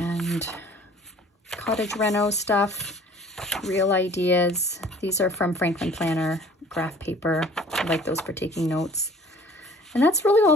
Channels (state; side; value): normal; both; correlation 0.51